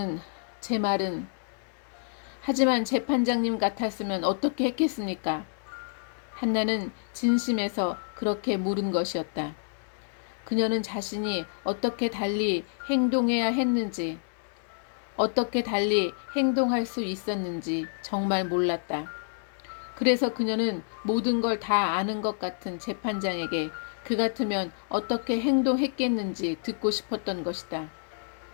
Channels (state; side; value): silent; right; digital silence